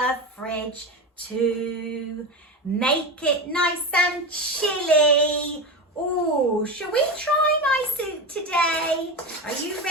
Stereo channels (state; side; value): normal; both; correlation 0.21